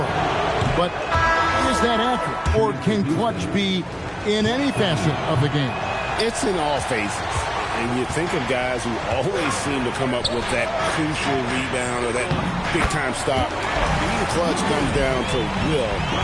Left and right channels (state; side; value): identical; both; correlation 1.00